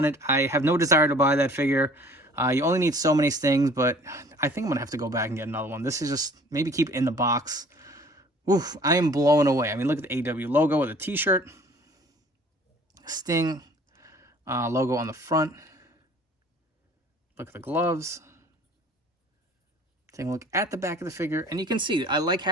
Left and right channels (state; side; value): normal; both; correlation 0.51